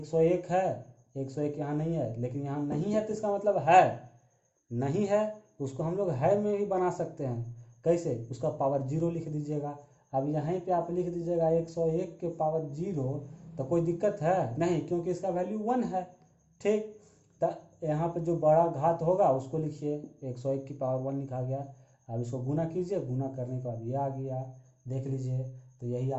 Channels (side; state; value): both; identical; correlation 1.00